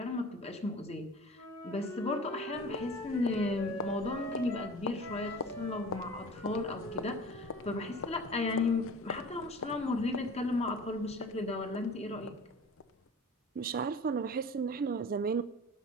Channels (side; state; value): both; normal; correlation 0.40